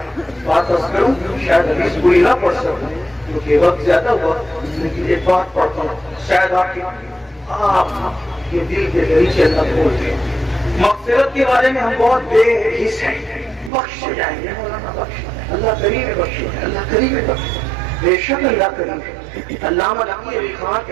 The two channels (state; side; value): drops out; left; at 13.7 s